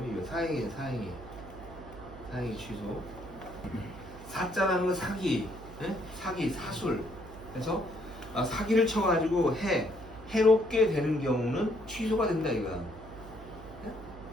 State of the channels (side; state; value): right; noise; hum, 16 dB below the sound